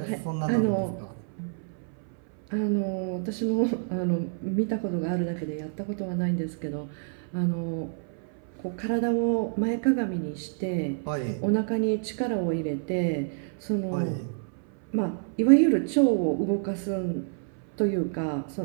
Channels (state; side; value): silent; left; 59 dB below the other